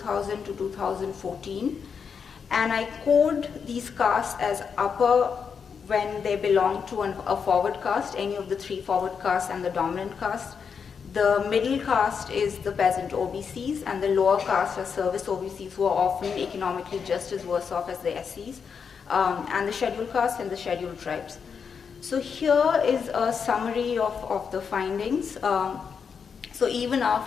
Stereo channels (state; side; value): quieter; right; 6.3 dB